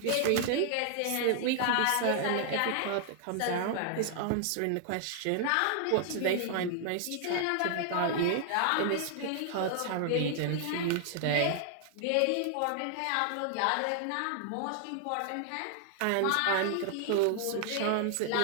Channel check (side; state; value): both; different; correlation 0.00